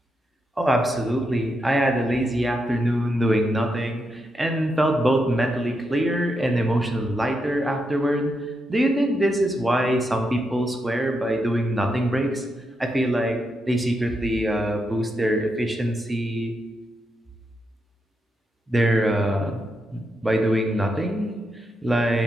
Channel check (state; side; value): normal; both; correlation 0.83